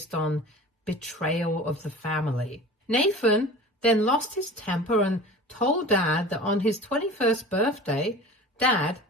on betrayal of the family. Nathan then lost his temper and told Dad that on his 21st birthday, Dad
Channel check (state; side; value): normal; both; correlation 0.38